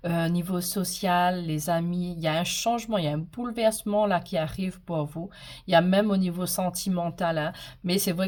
niveau social, les amis, il y a un changement, il y a un bouleversement là qui arrive pour vous. Il y a même au niveau sentimental. Mais c'est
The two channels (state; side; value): identical; both; correlation 1.00